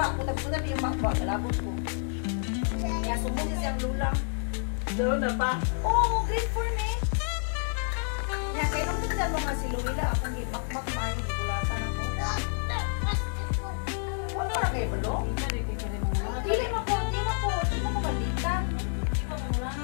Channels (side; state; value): right; silent; 56 dB below the other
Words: putab-putab yung makba, kalabot ko. Kaya sumuli siyang lulang. Doon na pa. Oh, great for me. Kaya kainom din dyan mga si Luila, akong imakmak mayo, gulatan ako. Huwag mo na kayo balo? Dili mo ko, di mo balikan.